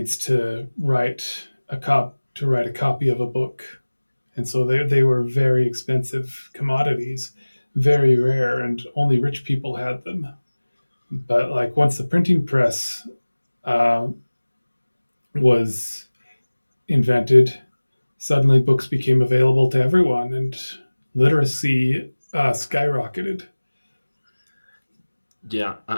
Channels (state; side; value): inverted; both; correlation -1.00